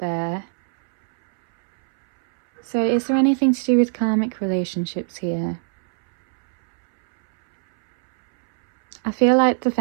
So is there anything to do with karmic relationships here? I feel like the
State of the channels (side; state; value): left; silent; 64 dB below the other